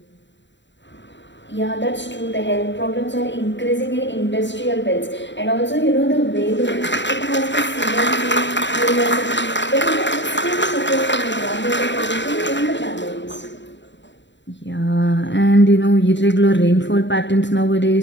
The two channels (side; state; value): right; late; 0.53 ms